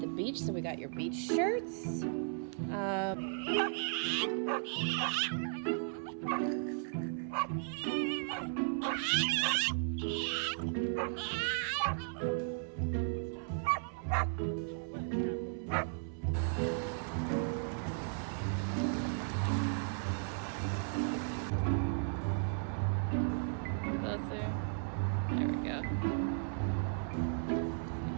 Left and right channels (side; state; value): left; silent; 54 dB below the other